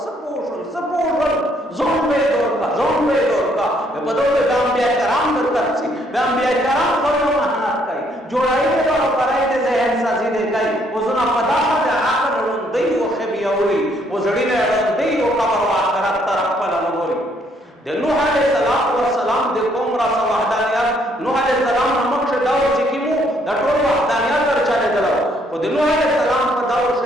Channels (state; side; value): normal; both; correlation 0.68